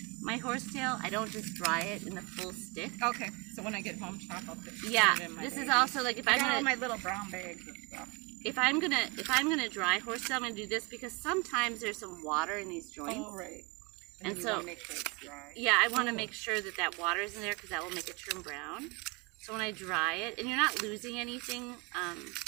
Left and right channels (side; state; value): left; quieter; 28.4 dB